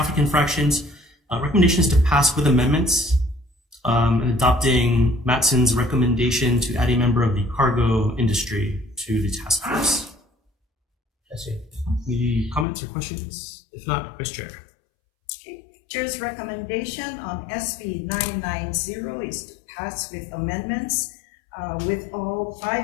infractions. Recommendations to pass with amendments, and adopting Matson's recommendation to add a member of the cargo industry to the task force. Any comments or questions? If not, Vice Chair. Okay. Chair's recommendation on SB 990 is to pass with amendments with all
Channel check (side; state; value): right; drops out; at 12.7 s